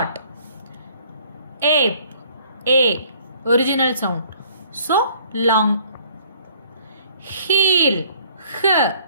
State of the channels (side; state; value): both; inverted; correlation -0.58